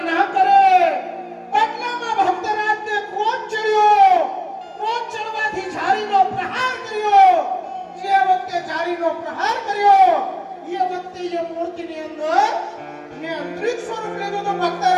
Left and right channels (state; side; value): identical; both; correlation 1.00